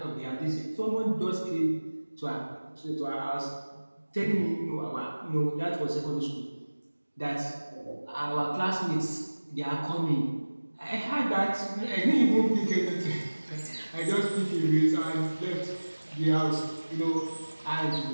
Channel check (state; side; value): inverted; both; correlation -1.00